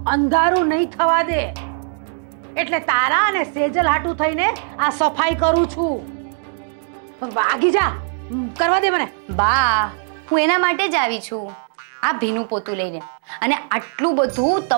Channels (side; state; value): left; silent; 66 dB below the other